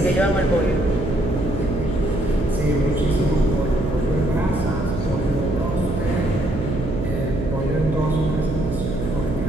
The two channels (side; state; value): right; noise; hum, 4 dB below the sound